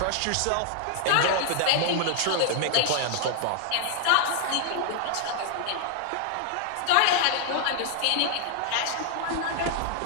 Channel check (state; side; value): different; both; correlation 0.00